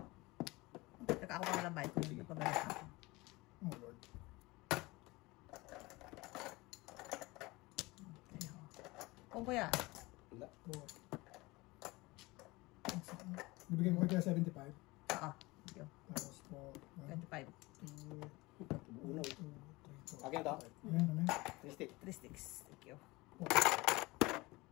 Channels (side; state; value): right; quieter; 22.3 dB